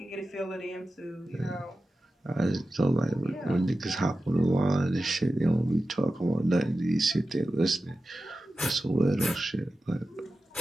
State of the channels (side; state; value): both; normal; correlation 0.93